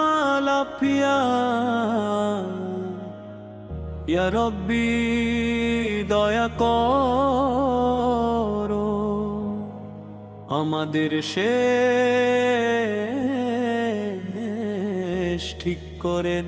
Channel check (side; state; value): both; identical; correlation 1.00